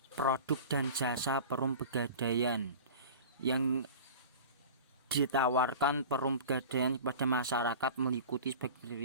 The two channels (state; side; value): inverted; both; correlation -0.37